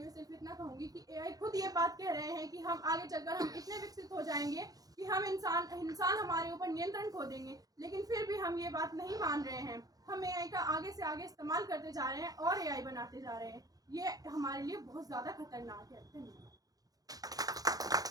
सिर्फ इतना कहूँगी कि एआई खुद ये बात कह रहे हैं कि हम आगे चलकर हम इतने विकसित हो जाएंगे कि हम इंसान हमारे ऊपर नियंत्रण खो देंगे, लेकिन फिर भी हम ये बात नहीं मान रहे हैं। हम एआई का आगे से आगे इस्तेमाल करते जा रहे हैं और एआई बनाते जा रहे हैं। ये हमारे लिए बहुत ज़्यादा खतरनाक है। धन्यवाद।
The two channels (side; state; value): left; late; 0.18 ms